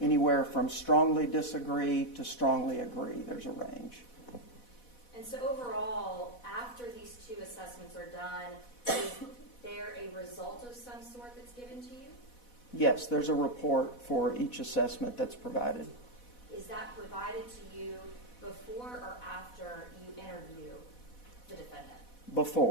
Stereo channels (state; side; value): late; right; 4.1 ms